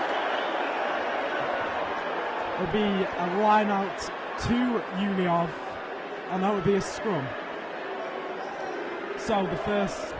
It'll be a line out to Uni of, and that would be a scrum. So the first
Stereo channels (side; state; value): both; identical; correlation 1.00